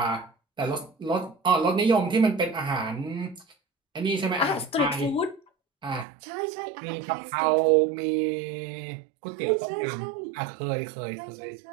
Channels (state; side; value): drops out; left; at 6.1 s